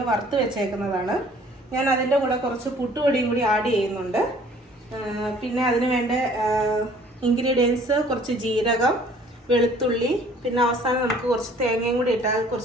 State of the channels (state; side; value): normal; both; correlation 0.55